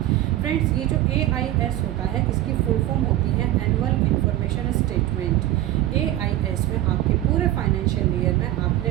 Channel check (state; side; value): quieter; left; 14.3 dB